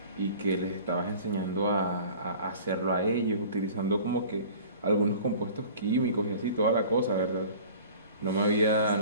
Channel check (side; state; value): both; inverted; correlation -0.45